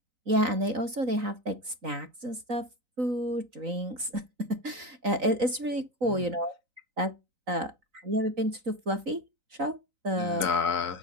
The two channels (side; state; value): left; late; 3.9 ms